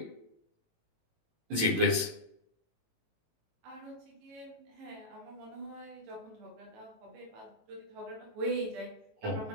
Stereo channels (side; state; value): left; late; 18 ms